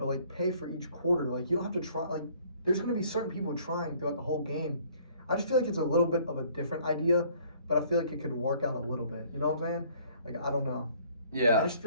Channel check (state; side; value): inverted; both; correlation -0.58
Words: like pay for each quarter. Like you don't have to try. Like there's going to be certain people trying throughout the whole game. I just feel like it's a little bit of a different idea, but I feel like it could work out a little bit. You know what I'm saying? Like I don't know. Yeah. I just